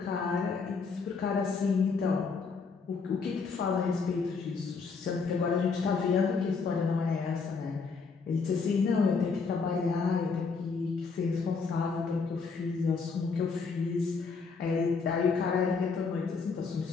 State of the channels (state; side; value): quieter; right; 4.9 dB